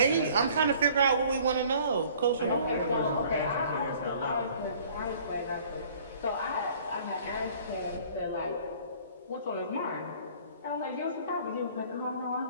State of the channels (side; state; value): both; inverted; correlation -0.53